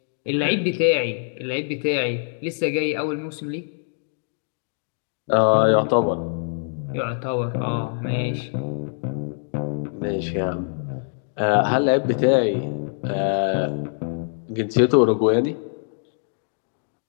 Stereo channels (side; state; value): right; silent; digital silence